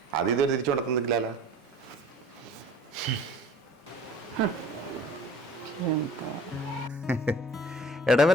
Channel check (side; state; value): both; normal; correlation 0.47